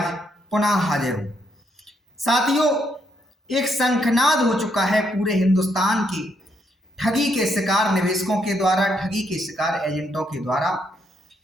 पुनः हाजिर हूं। साथियों, एक शंखनाद हो चुका है पूरे हिंदुस्तान की ठगी के शिकार निवेशकों के द्वारा, ठगी के शिकार एजेंटों के द्वारा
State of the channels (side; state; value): both; normal; correlation 0.75